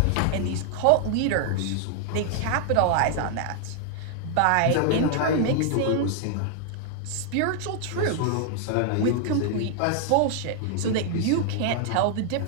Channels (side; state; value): both; different; correlation 0.00